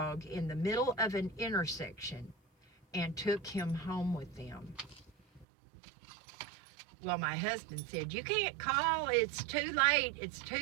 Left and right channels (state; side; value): drops out; left; at 5.5 s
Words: in the middle of an intersection and took him home with them. Well, my husband said, "You can't call, it's too